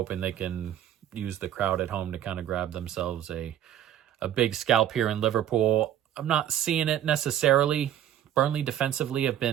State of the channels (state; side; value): quieter; left; 11.1 dB